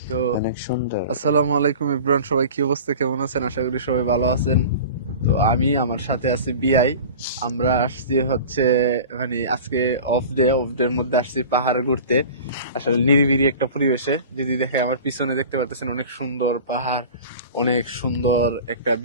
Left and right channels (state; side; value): inverted; both; correlation -0.38